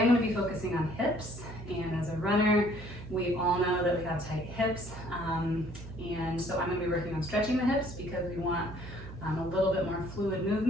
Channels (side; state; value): right; noise; hum, 12 dB below the sound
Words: going to be focusing on hips, and as a runner, we all know that we have tight hips, and so I'm going to be working on stretching the hips because we want a little bit more fluid